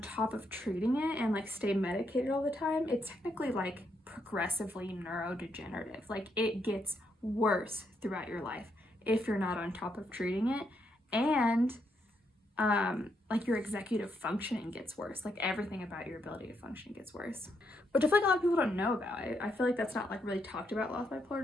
top of treating it and, like, stay medicated all the time, it's technically, like, progressively neurodegenerative. Like, it gets worse throughout your life if you're not on top of treating it. And like your executive functioning gets worse. Like everything about your ability to function gets worse. Which I feel like a lot of people don't know about. I feel like that's not like really talked about a lot with bipolar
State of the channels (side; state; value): both; normal; correlation 0.78